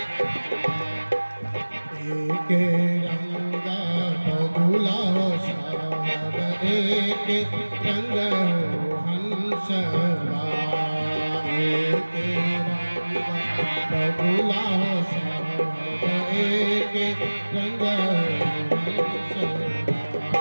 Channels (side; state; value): both; inverted; correlation -1.00